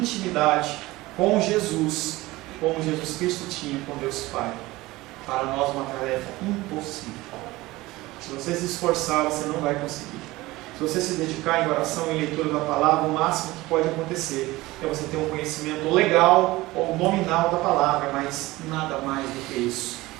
com Jesus, como Jesus Cristo tinha com Deus Pai. Para nós uma tarefa impossível. Se você se esforçar, você não vai conseguir. Se você se dedicar em oração e leitura da palavra, o máximo que pode acontecer é você ter um conhecimento legal ou nominal da palavra, mas nada mais do que isso.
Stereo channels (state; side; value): quieter; left; 19.4 dB